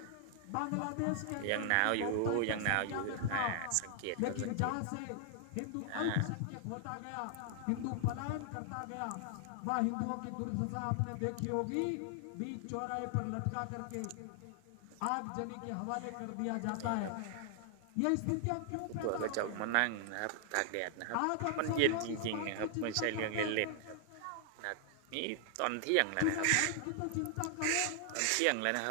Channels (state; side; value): different; both; correlation 0.00